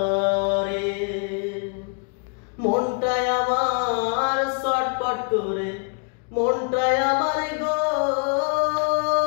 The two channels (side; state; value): right; quieter; 38.4 dB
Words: মনটায় আমার ছটফট করে, মনটায় আমার গো